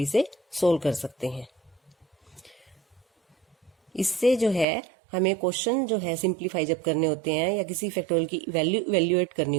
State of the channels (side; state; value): left; drops out; at 4.7 s